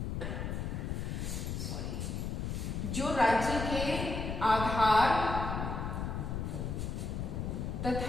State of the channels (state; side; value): noise; left; rumble, 3 dB below the sound